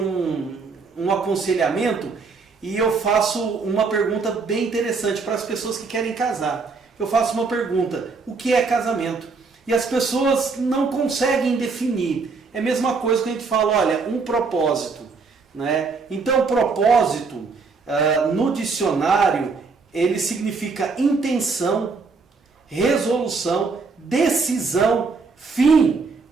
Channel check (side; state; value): left; quieter; 4.5 dB